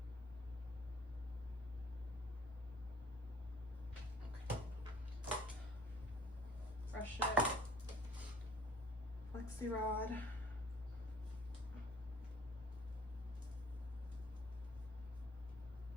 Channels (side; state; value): both; normal; correlation 0.53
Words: Okay. Brush it. Flexi rod.